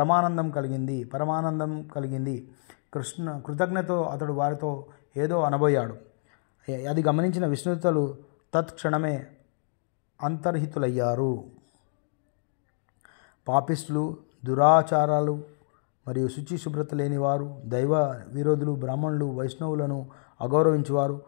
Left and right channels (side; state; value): right; silent; digital silence